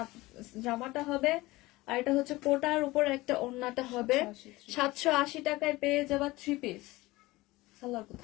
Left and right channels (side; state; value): right; quieter; 19.9 dB